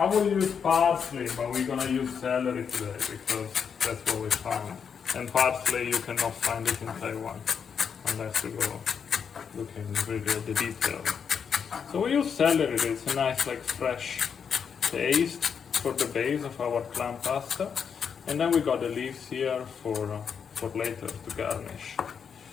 will use parsley, but we're gonna use celery today because that's what we found. And parsley you cannot find it in Taiwan unless you go looking really at the details. So we use celery. It's a nice like fresh taste for the base of our clam pasta, and then we got the leaves here for later to garnish.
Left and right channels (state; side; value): quieter; right; 6.9 dB